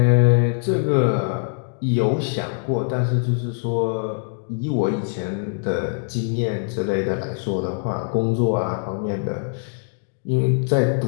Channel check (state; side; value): silent; right; digital silence